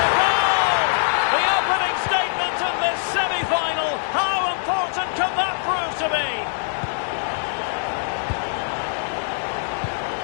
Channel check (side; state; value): right; silent; digital silence